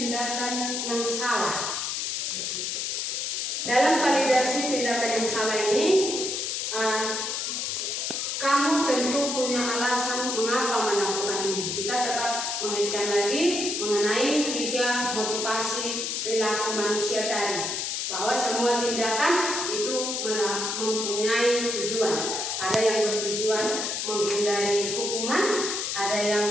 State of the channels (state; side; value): noise; left; hiss, 2 dB below the sound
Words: yang salah. Dalam validasi tindakan yang salah ini, kamu tentu punya alasan mengapa melakukan ini. Kita tetap mengaitkan lagi mengenai 3 motivasi perilaku manusia tadi, bahwa semua tindakan itu mempunyai tujuan. Ada yang bertujuan menghindari hukuman, ada